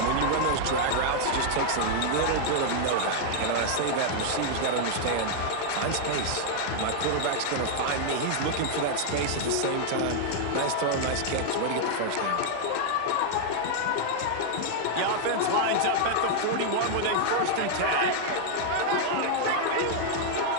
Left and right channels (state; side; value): different; both; correlation 0.00